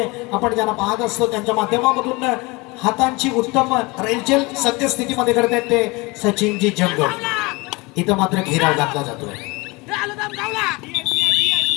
आपण ज्यांना पाहत असतो त्यांच्या माध्यमामधून हातांची उत्तम रेलचेल सद्यस्थितीमध्ये करतात ते सचिनजी जंगल. इथं मात्र घेराव घातला जातोय.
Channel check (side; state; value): right; quieter; 25.1 dB